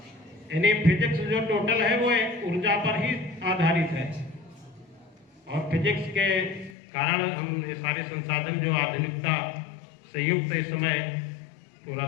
यानी फिजिक्स जो टोटल है वो ऊर्जा पर ही आधारित है। और फिजिक्स के कारण हम ये सारे संसाधन जो आधुनिकता से युक्त इस समय पूरा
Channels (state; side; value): drops out; right; at 6.8 s